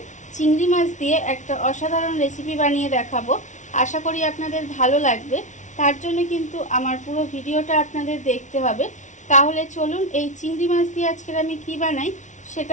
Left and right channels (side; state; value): right; late; 0.36 ms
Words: চিংড়ি মাছ দিয়ে একটা অসাধারণ রেসিপি বানিয়ে দেখাবো। আশা করি আপনাদের ভালো লাগবে। তার জন্য কিন্তু আমার পুরো ভিডিওটা আপনাদের দেখতে হবে। তাহলে চলুন এই চিংড়ি মাছ দিয়ে আজকের আমি কি বানাই